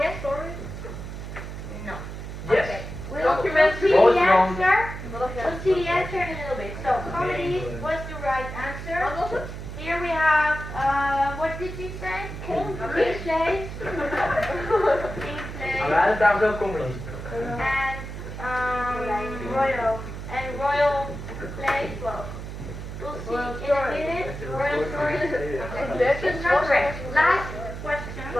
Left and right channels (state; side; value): noise; right; hum, 9 dB below the sound